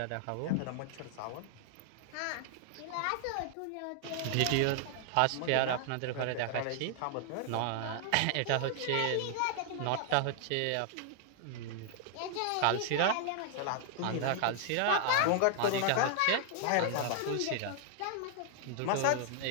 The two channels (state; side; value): different; both; correlation 0.00